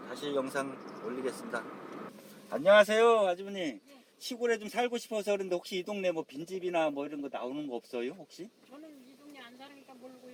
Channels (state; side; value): identical; both; correlation 1.00